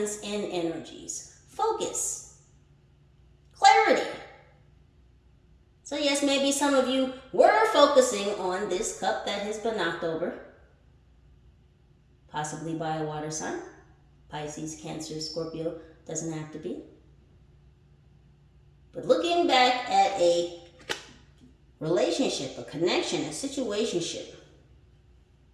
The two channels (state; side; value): identical; both; correlation 1.00